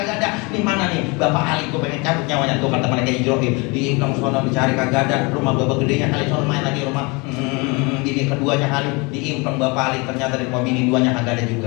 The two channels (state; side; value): quieter; right; 28.1 dB